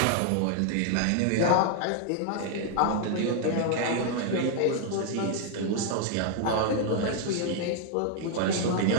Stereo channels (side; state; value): both; different; correlation 0.00